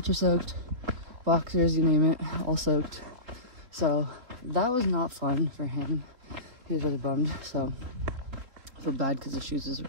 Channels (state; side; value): late; left; 3.5 ms